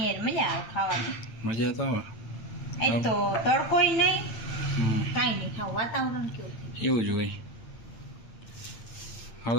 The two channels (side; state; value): right; late; 8.9 ms